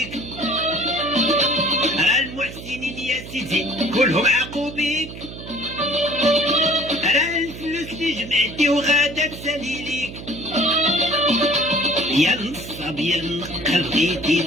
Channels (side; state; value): right; noise; hum, 12 dB below the sound